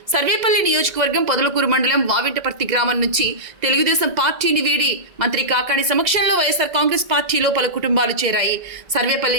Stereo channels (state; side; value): late; left; 2.0 ms